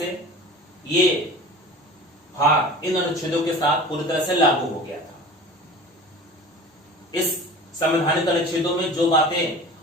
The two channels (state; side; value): normal; both; correlation 0.39